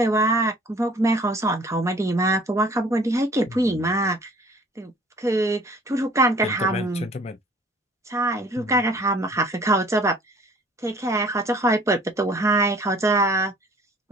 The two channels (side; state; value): both; normal; correlation 0.53